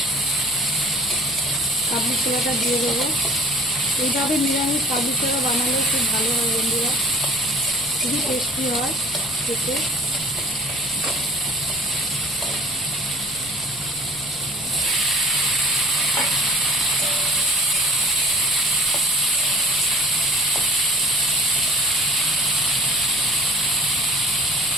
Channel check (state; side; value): noise; left; rumble, 21 dB below the sound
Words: কাবলি ছোলাটা দিয়ে দেবো। এইভাবে নিরামিষ কাবলি ছোলা বানালে খুব ভালো হয় বন্ধুরা, খুবই টেস্টি হয় খেতে।